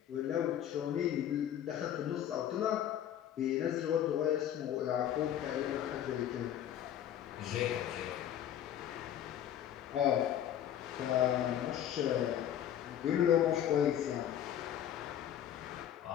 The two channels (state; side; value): quieter; right; 10.6 dB